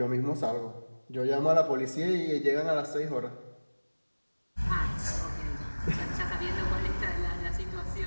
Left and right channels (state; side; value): inverted; both; correlation -1.00